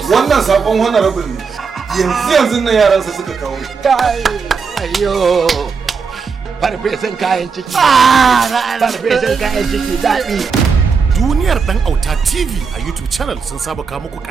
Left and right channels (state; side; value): quieter; left; 5.4 dB